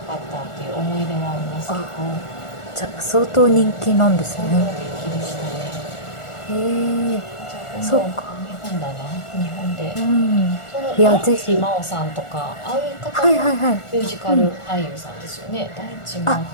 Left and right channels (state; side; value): late; right; 1.4 ms